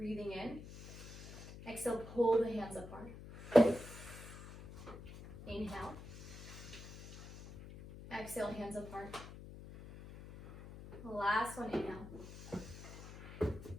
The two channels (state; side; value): noise; left; hum, 13 dB below the sound